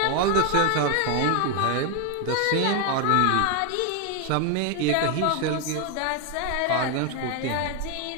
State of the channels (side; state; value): both; different; correlation 0.01